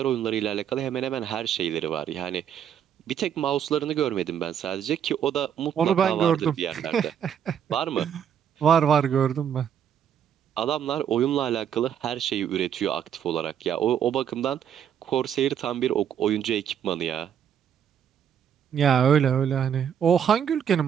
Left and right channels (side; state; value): left; quieter; 8.9 dB